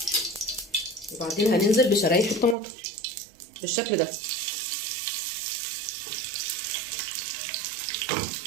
وبعدين هننزل بشرايح الطماطم بالشكل ده.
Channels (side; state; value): left; drops out; at 2.6 s